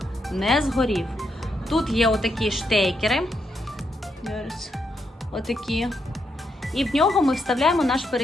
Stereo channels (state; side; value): normal; both; correlation 0.80